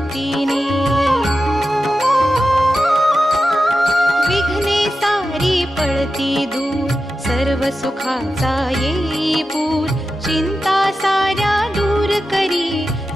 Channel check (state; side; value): normal; both; correlation 0.91